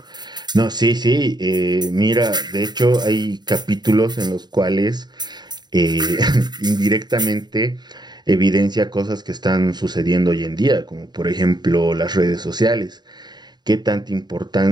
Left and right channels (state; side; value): late; left; 0.20 ms